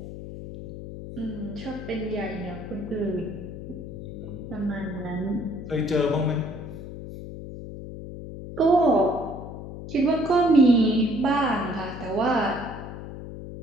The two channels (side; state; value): left; noise; hum, 10 dB below the sound